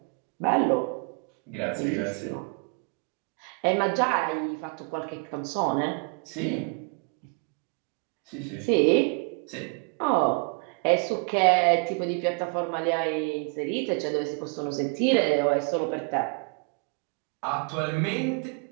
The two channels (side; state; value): left; quieter; 36.9 dB